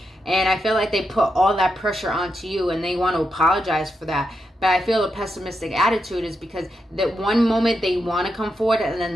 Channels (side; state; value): both; normal; correlation 0.85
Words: And I feel like they put all that pressure onto you, and they want to apologize for that. But I feel a pessimistic attitude is because that one moment they want to come forward, and the